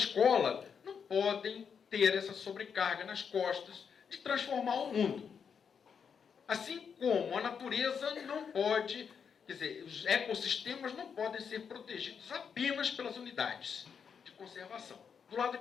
não podem ter essa sobrecarga nas costas de transformar o mundo. Assim como a natureza não pode, quer dizer, os ecossistemas não podem ser protegidos apenas pelas unidades de conservação. Do lado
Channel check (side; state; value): right; quieter; 6.7 dB